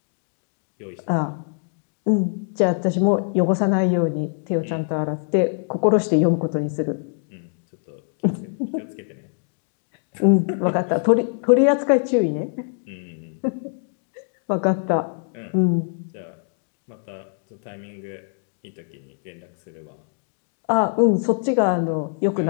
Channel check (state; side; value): silent; right; 63 dB below the other